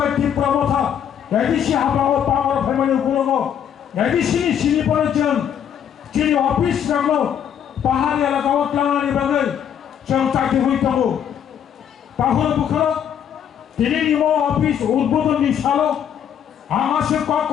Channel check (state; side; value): quieter; right; 9.0 dB